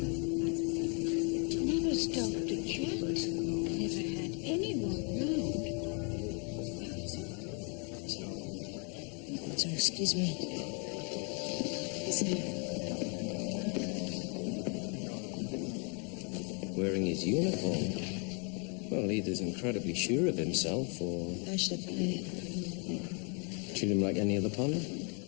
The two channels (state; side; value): quieter; right; 37.1 dB